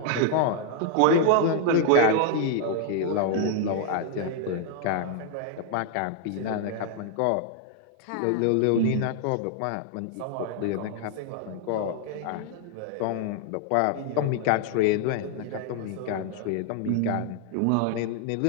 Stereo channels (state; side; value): different; both; correlation 0.00